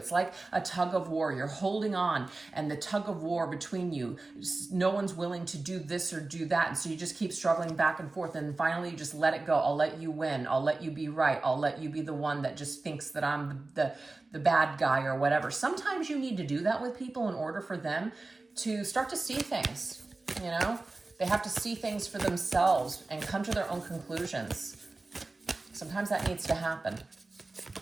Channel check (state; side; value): quieter; left; 3.3 dB